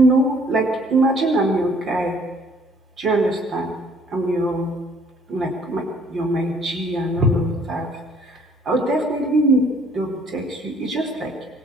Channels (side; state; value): both; normal; correlation 0.60